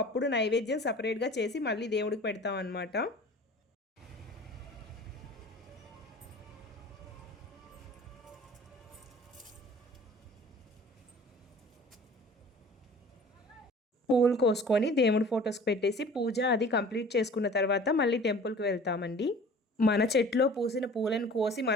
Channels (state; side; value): normal; both; correlation 0.45